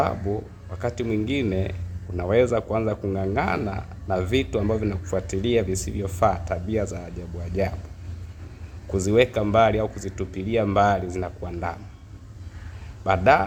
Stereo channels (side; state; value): both; identical; correlation 1.00